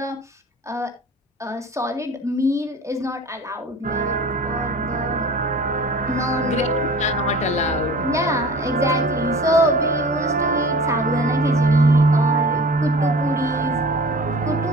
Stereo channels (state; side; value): normal; both; correlation 0.42